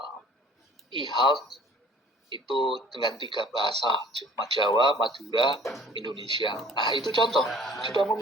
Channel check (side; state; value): both; normal; correlation 0.51